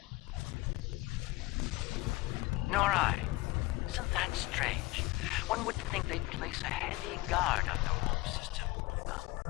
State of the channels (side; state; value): right; quieter; 20.0 dB